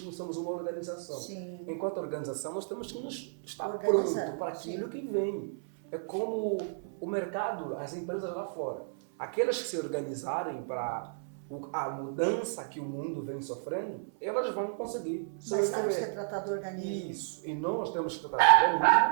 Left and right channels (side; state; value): left; silent; 56 dB below the other